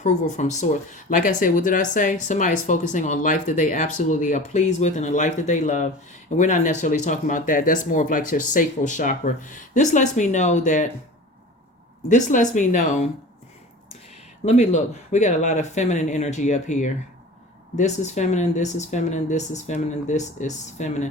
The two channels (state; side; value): normal; both; correlation 0.37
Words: from source. Like I said, what did I say? Somebody's focusing on life that they absolutely are pleased with and a life that they love. And we're not necessarily talking about that. That's more of like your sacral chakra. This lets me know. Let me look. We got a lot of feminine energy up here. This is feminine, this is feminine, this is feminine, this is